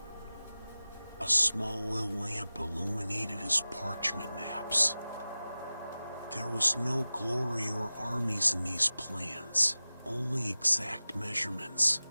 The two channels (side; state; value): both; inverted; correlation -0.97